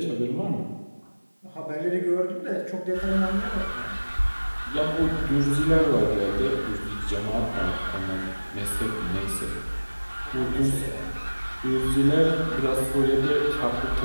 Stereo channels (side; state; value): both; inverted; correlation -1.00